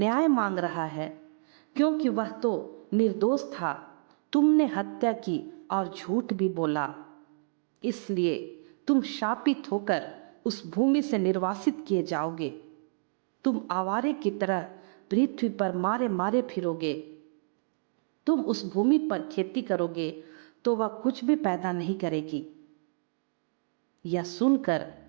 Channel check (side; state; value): left; silent; digital silence